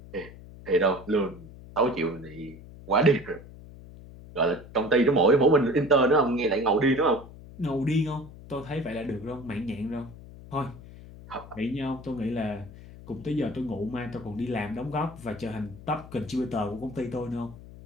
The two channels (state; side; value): noise; left; hum, 17 dB below the sound